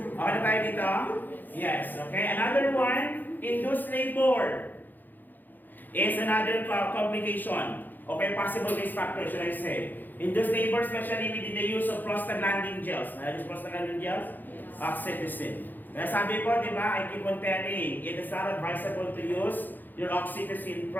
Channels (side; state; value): right; late; 0.087 ms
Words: Okay na tayo dito? Yes. Okay. Another one, induced labor is another complication. Okay, possible risk factor, should I say. Induced labor, especially with the use of prostaglandin gels. Nalagis prostaglandin gels? Oxytocin. Kaya sabi ko, di ba, I keep on telling, it is not advisable to use your oxytocin